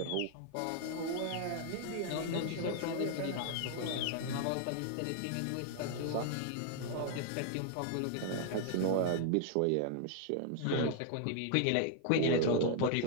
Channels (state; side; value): different; both; correlation 0.00